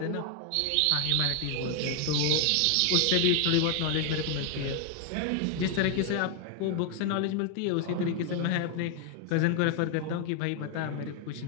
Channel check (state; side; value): different; both; correlation 0.00